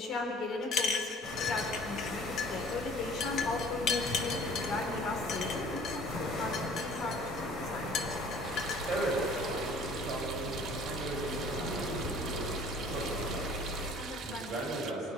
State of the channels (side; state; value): both; normal; correlation 0.51